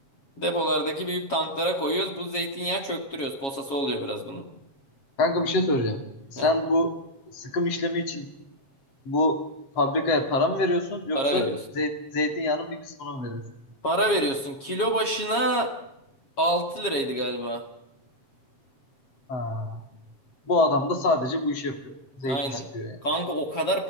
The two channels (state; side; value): late; right; 7.3 ms